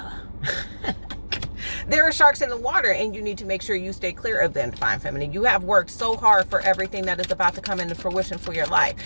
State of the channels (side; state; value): both; inverted; correlation -1.00